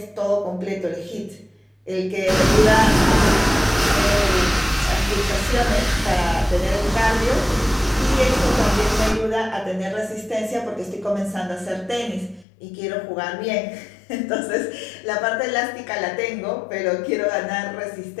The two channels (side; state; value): right; drops out; at 12.5 s